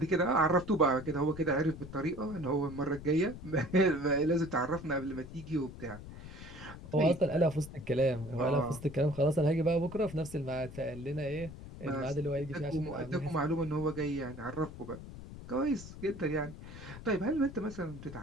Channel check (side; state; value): left; noise; rumble, 13 dB below the sound